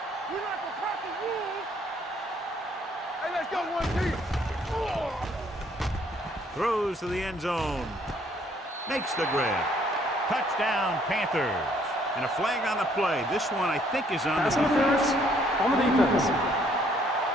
We like the Packers rules. Hey, let's go one deep. Throws to the end zone. Makes the grab. Touchdown, Panthers. And a flag on the play. This one, I think, is on the Pass interference on the defense.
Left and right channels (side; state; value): both; normal; correlation 0.65